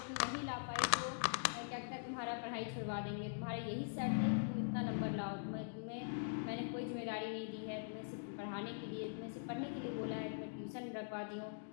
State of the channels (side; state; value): right; silent; digital silence